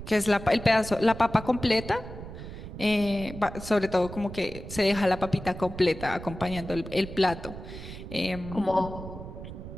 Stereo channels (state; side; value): noise; right; rumble, 11 dB below the sound